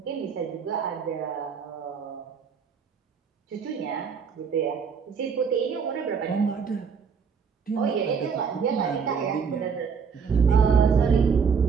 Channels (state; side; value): quieter; left; 6.1 dB